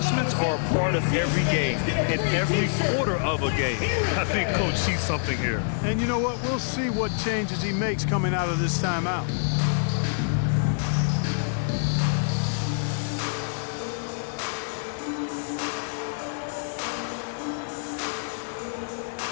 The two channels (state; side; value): silent; right; digital silence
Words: are a part of every game, in every quarter of a game. I think Coach sees something here. And you know what? We'll see what changes he makes coming out of this timeout.